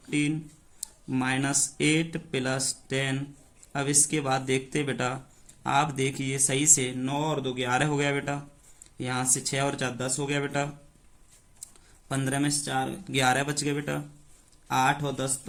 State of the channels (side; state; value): both; identical; correlation 1.00